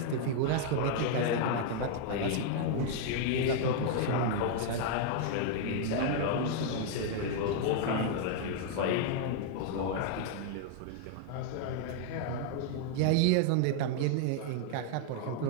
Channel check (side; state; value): both; different; correlation 0.00